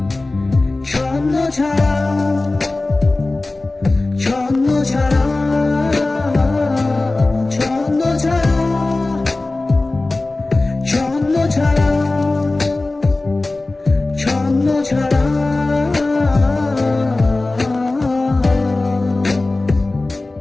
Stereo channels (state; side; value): quieter; right; 3.1 dB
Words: ছন্ন ছাড়া, ছন্ন ছাড়া, ছন্ন ছাড়া, ছন্ন ছাড়া, ছন্ন ছাড়া।